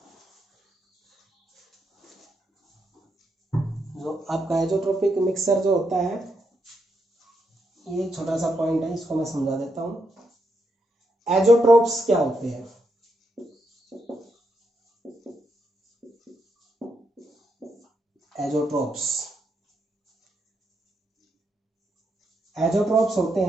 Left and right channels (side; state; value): both; normal; correlation 0.81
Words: जो आपका एजोट्रोपिक मिक्सर जो होता है, ये छोटा सा पॉइंट है, इसको मैं समझा देता हूं। एजोट्रोप्स क्या होते हैं, एजोट्रोप्स, एजोट्रोप्स होते